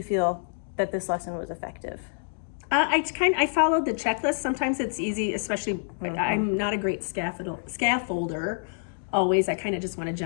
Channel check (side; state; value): right; silent; digital silence